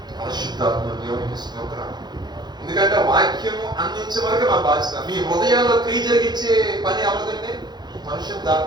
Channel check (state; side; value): late; left; 0.21 ms